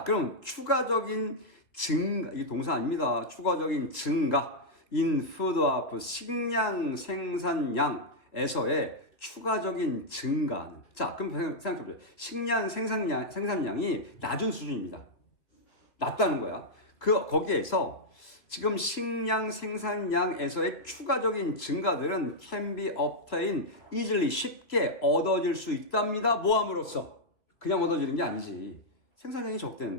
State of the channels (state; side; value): late; right; 2.4 ms